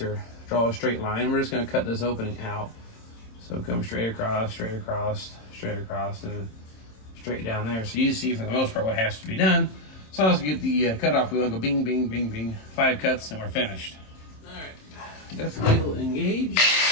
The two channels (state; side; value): late; right; 27 ms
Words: or draw a straight line. We're just going to cut this opening out. So come straight across, straight across, straight across, and straight down there. So you see for the most part what has to be done. So let's get the cutoff wheel and go bing, bing, bing, bing. 5 cuts and we're finished. All right, depth wheel engaged.